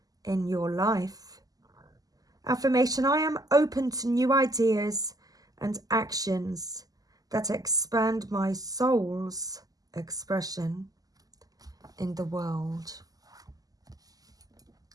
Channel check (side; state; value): left; late; 0.17 ms